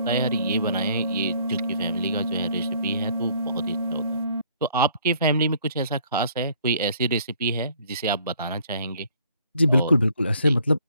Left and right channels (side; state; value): both; inverted; correlation -0.61